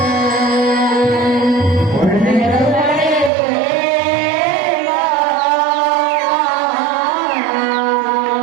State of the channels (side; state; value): left; drops out; at 3.3 s